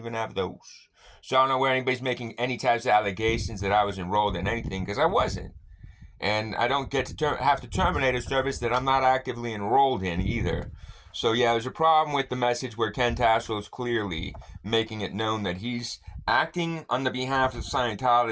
have those. So I don't know where anybody's making any types of allegations that I was enrolled in anything, because I wasn't. And I don't get to have to terminate a service that I'm not actively enrolled in either. So yeah, there's a problem with the message where Ken Tassel is clearly making it known that he's acting on the behalf of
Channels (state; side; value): identical; both; correlation 1.00